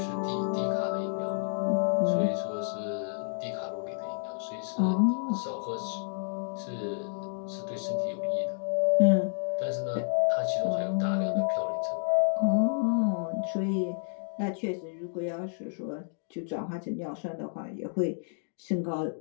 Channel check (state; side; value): silent; right; digital silence